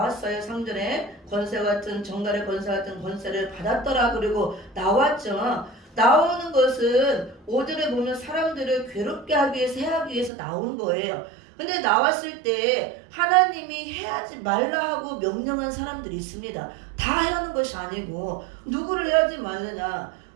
3절에 권세 같은, 정갈의 권세 같은 권세를 받았더라. 그리고 나왔죠. 나오는 것은 5절에 보면 사람들을 괴롭게 하기 위해서, 해하기 위해서 나온 거예요. 근데 나왔을 때 하나님이 해하지 말라 하고 명령한 사람들이 있습니다. 다 해라는 것이 아니고 누구를 해하지 말느냐,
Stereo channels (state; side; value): drops out; left; at 10.3 s